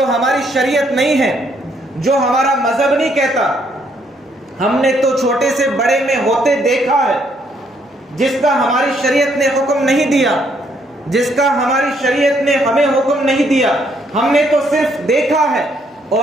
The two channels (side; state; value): both; normal; correlation 0.70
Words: ہماری شریعت نہیں ہے، جو ہمارا مذہب نہیں کہتا۔ ہم نے تو چھوٹے سے بڑے میں ہوتے دیکھا ہے، جس کا ہماری شریعت نے حکم نہیں دیا، جس کا ہماری شریعت نے ہمیں حکم نہیں دیا، ہم نے تو صرف دیکھا ہے